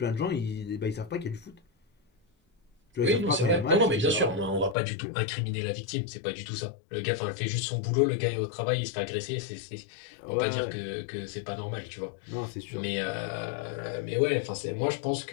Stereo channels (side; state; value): right; drops out; at 4.8 s